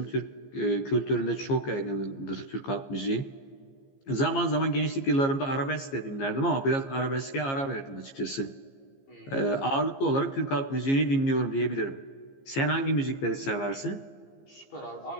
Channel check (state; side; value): late; right; 15 ms